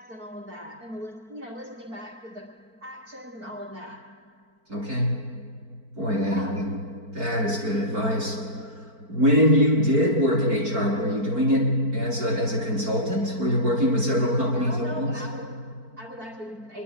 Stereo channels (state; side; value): late; left; 4.5 ms